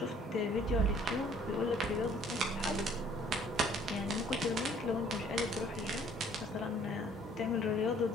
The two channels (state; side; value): normal; both; correlation 0.57